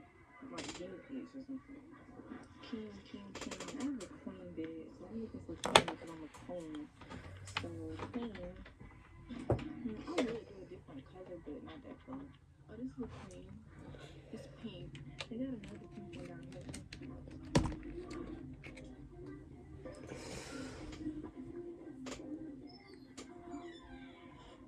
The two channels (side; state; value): both; identical; correlation 1.00